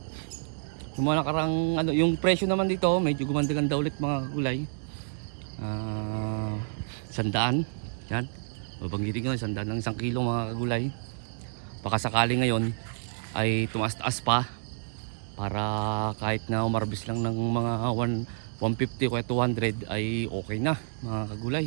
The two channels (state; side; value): silent; left; digital silence